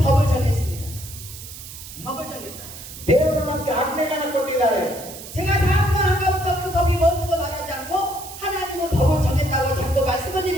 법을 정했습니다. 법을 정했다. ದೇವರು ನಮಗೆ ಆಜ್ಞೆಗಳನ್ನು ಕೊಟ್ಟಿದ್ದಾರೆ. 제가 다음번 아까부터 그 법이 뭔지도 말하지 않고 하나님은 법을 정했다고 자꾸 말씀을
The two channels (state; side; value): noise; right; hiss, 13 dB below the sound